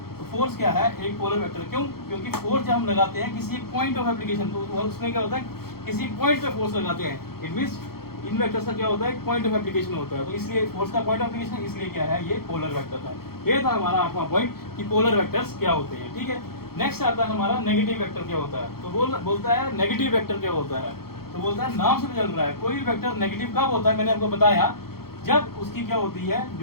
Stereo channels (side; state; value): right; late; 0.94 ms